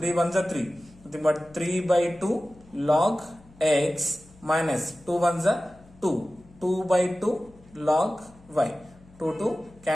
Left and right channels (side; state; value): left; noise; hum, 25 dB below the sound